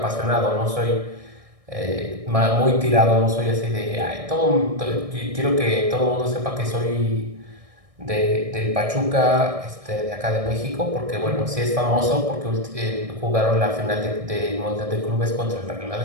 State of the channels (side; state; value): left; late; 1.6 ms